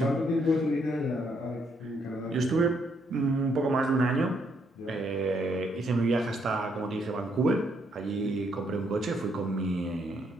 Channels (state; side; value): normal; both; correlation 0.73